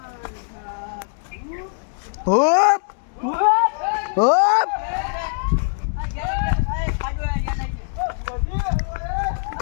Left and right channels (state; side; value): silent; right; digital silence